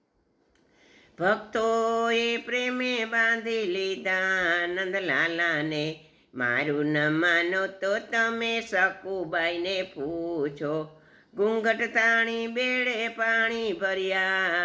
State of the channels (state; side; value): identical; both; correlation 1.00